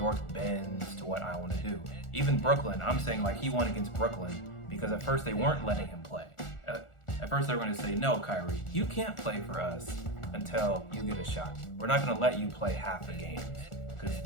bends to what I want to do. Even Brooklyn, I'm saying like he won against Brooklyn because at first they weren't letting him play. At first they were going to say, no, Kyrie, you can't play for us until you get a shot. We're not going to let you play half the games. Because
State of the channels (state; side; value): late; right; 1.4 ms